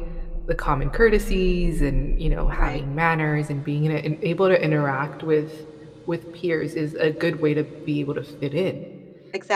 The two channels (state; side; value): identical; both; correlation 1.00